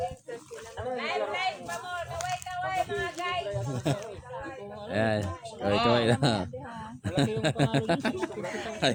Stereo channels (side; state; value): both; identical; correlation 1.00